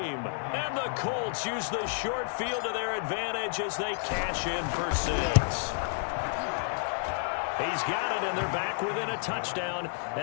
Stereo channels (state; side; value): silent; right; digital silence